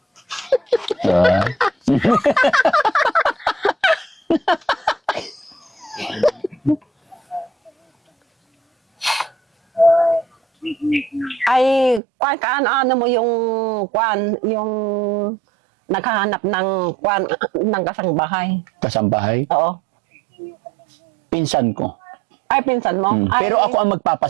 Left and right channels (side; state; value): left; drops out; at 12.0 s